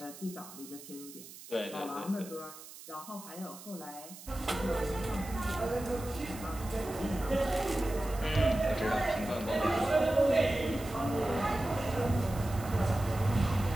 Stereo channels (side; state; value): right; noise; hiss, 16 dB below the sound